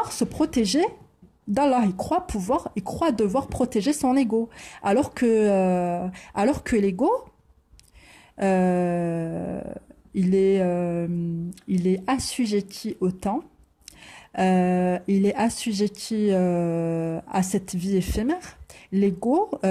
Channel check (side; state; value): both; identical; correlation 1.00